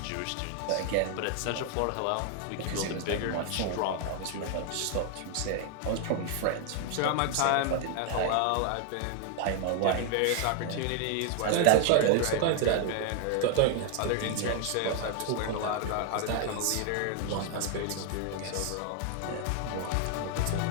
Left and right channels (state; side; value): different; both; correlation 0.00